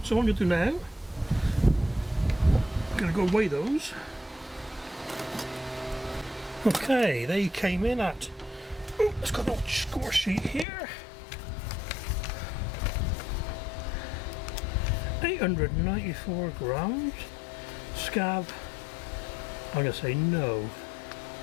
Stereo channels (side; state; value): right; drops out; at 10.7 s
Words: So what I'm going to do now, I'm going to go weigh those. Okay, they came in at, let's got a little score sheet here. 894 grams. Scab, I'm going to say no.